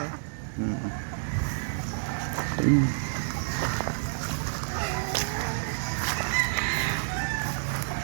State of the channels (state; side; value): silent; left; digital silence